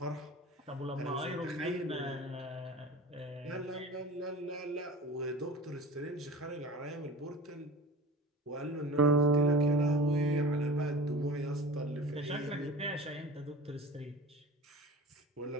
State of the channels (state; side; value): normal; both; correlation 0.36